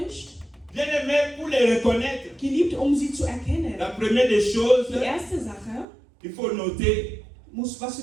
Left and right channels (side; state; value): left; drops out; at 5.9 s